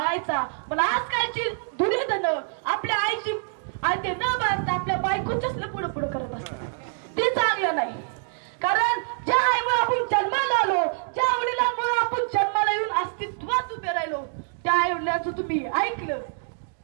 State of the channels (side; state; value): left; silent; digital silence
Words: मला आजकालची दुर्योधन आपल्या आईची आज्ञा न पाळता आपल्या बायकोच्याच पुढे पुढे करत असतात. ते चांगलं नाही. कारण ज्या आईमुळे आपण जन्माला आलो, ज्या वडिलांमुळे आपण जन्माला येऊन अस्तित्वात उभे राहिलो, त्या आई वडिलांचं तुम्ही ऐकलं